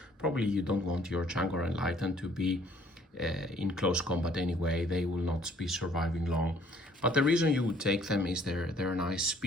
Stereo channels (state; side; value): normal; both; correlation 0.60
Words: Probably you don't want your Tzaangor Enlightened to be in close combat anyway. They will not be surviving long. But the reason you would take them is their nice